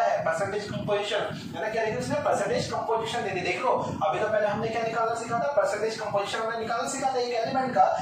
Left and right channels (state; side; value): identical; both; correlation 1.00